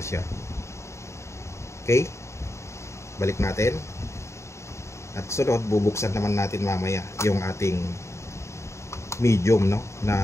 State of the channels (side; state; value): right; late; 0.14 ms